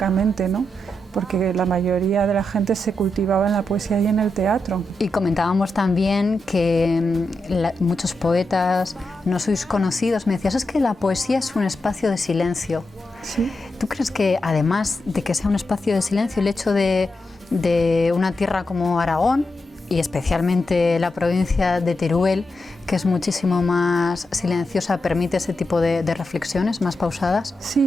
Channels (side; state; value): both; normal; correlation 0.87